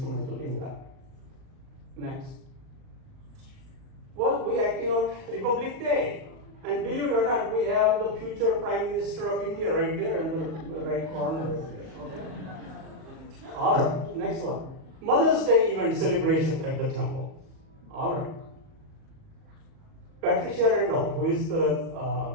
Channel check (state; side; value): late; left; 38 ms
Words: in that. Next. Well, we acting out Republic Day. And believe it or not, we have the future Prime Minister of India right there in the right corner. Right there. Okay. All right, next one. Mother's Day event celebration at the temple. All right. Patricia Randall, who is the